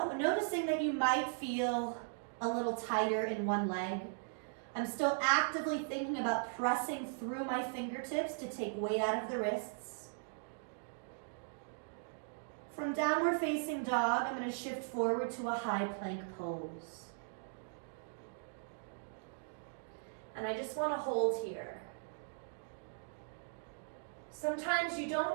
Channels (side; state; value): left; silent; digital silence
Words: noticing that you might feel a little tighter in one leg. I'm still actively thinking about pressing through my fingertips to take weight out of the wrists. From downward facing dog, I'm going to shift forward to a high plank pose. And I just want to hold here. Sometimes you